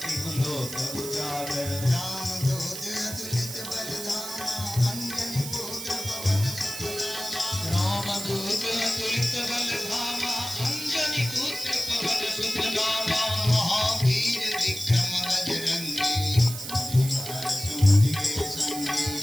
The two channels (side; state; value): right; noise; hiss, 8 dB below the sound